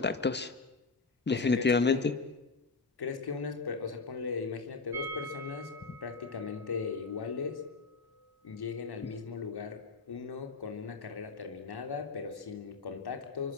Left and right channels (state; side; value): quieter; right; 4.3 dB